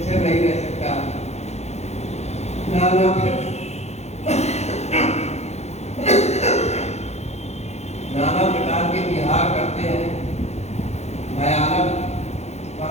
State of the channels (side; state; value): right; late; 0.32 ms